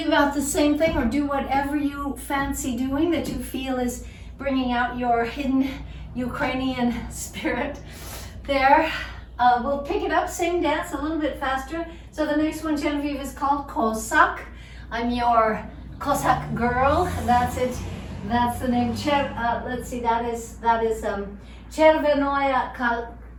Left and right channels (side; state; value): both; identical; correlation 1.00